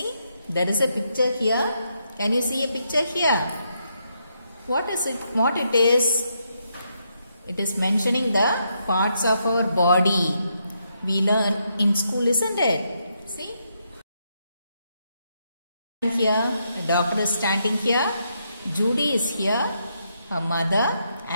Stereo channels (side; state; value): both; inverted; correlation -0.79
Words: there is a picture here. Can you see a picture here? What is it? What it is? It is mentioning the parts of our body. We learn in school, isn't it? See? Here, a doctor is standing here. Judy is here, her mother,